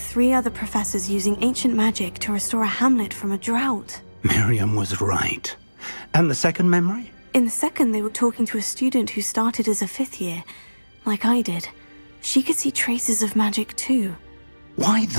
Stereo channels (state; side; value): inverted; both; correlation -1.00